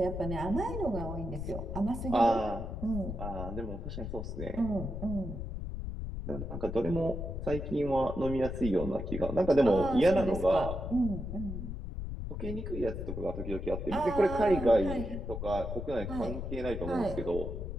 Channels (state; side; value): noise; left; rumble, 6 dB below the sound